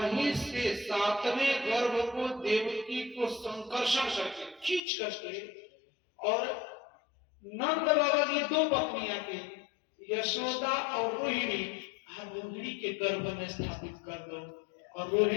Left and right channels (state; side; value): drops out; right; at 4.8 s